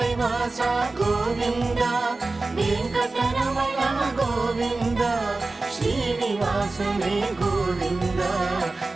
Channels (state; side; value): quieter; left; 3.4 dB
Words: வாசா கோவிந்தா, வெங்கடரமணா கோவிந்தா, ஸ்ரீனிவாசனே கோவிந்தா,